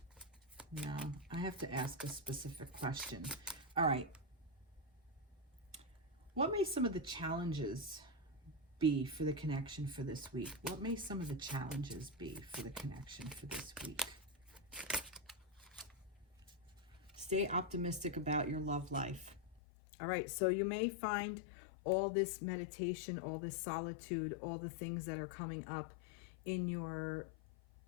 No, I have to ask a specific question. All right. What may some of the challenges be for the connection for this week? What may some of the challenges be for the connection for this week? Stay optimistic about your love life. All right, so you may find all this meditation, all this solitude, all the things that are coming up in your,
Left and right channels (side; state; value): right; drops out; at 19.6 s